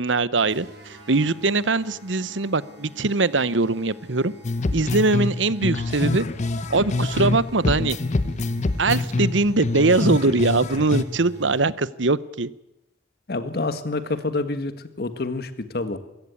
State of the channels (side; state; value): both; normal; correlation 0.21